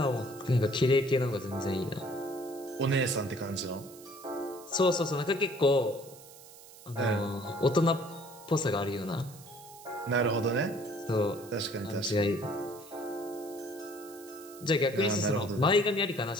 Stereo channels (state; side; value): noise; right; hiss, 20 dB below the sound